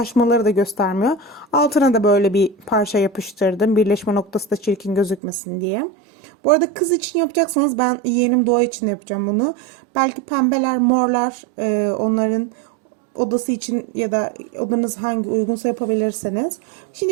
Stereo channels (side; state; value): left; drops out; at 5.2 s